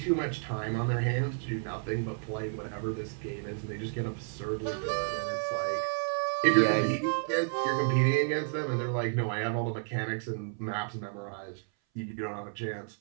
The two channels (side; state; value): left; silent; 57 dB below the other